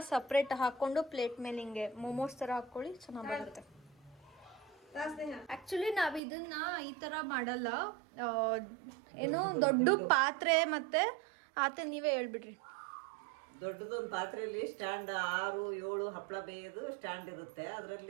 ಸಪ್ರೇಟ್ ಹಾಕೊಂಡು ಪ್ಲೇಟ್ ಮೇಲೆ ಹಿಂಗೆ ಮೋಮೋಸ್ ತರ ಹಾಕೊಳ್ಳಿ, ಚೆನ್ನಾಗಿ ಬರುತ್ತೆ. ಆಕ್ಚುಲಿ ನಾವ್ ಇದನ್ನ ಈ ತರ ಮಾಡಲ್ಲ. ಏನು ದೊಡ್ಡ ಪಾತ್ರೆ ಮತ್ತೆ ಆತ ನೀವೇ ಹೇಳ್ಬಿಡ್ರಿ. ದೊಡ್ಡದೊಂದು ಪಾತ್ರೆಯಲ್ಲಿ ಸ್ಟ್ಯಾಂಡ್ 6-7 ಹಪ್ಪಳ ಬೇಯೋದು ಸ್ಟ್ಯಾಂಡ್ ಇರುತ್ತೆ.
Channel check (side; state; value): left; drops out; at 6.2 s